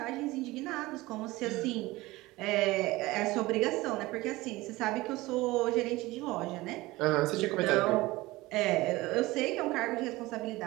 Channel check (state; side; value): quieter; left; 19.8 dB